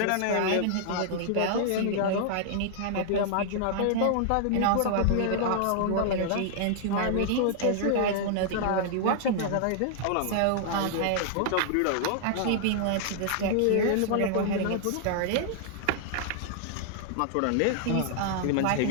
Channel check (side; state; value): both; different; correlation -0.01